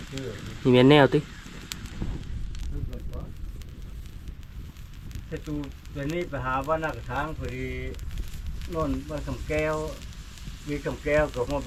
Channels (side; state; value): both; identical; correlation 1.00